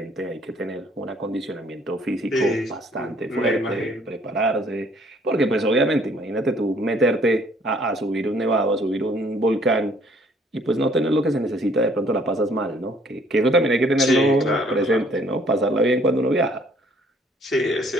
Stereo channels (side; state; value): both; normal; correlation 0.61